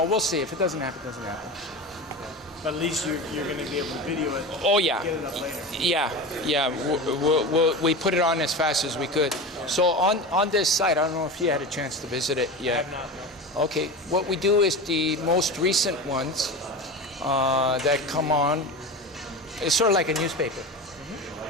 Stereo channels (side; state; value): both; normal; correlation 0.27